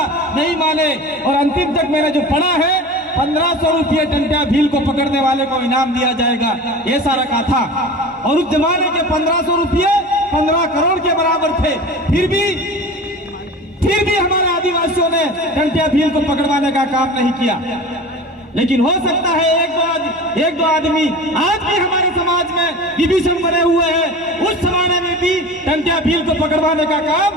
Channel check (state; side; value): normal; both; correlation 0.35